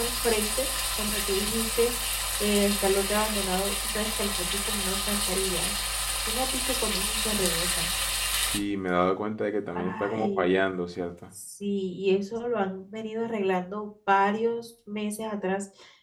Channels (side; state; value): both; identical; correlation 1.00